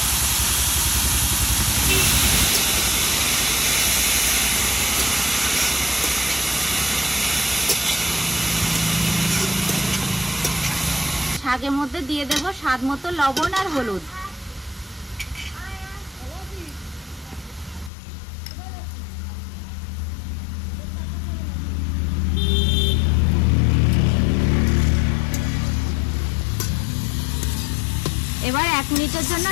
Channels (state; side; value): drops out; right; at 17.9 s